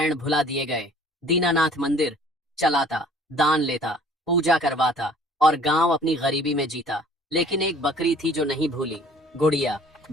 भुला दिए गए। दीनानाथ मंदिर चलाता, दान लेता, पूजा करवाता, और गांव अपनी गरीबी में जीता। लेकिन एक बकरी थी जो नहीं भूली, गुड़िया,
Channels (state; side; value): normal; both; correlation 0.53